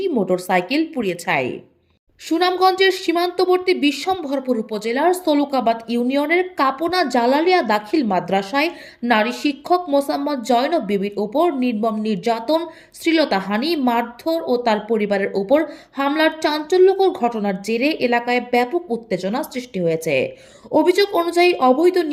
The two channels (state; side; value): identical; both; correlation 1.00